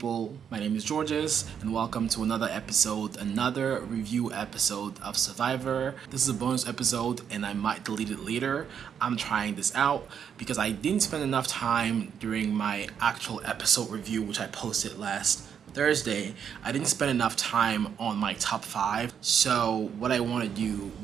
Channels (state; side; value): quieter; left; 7.9 dB